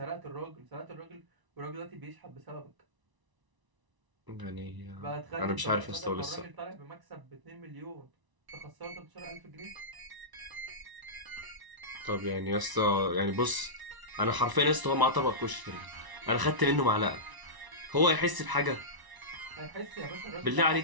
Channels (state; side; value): late; left; 1.0 ms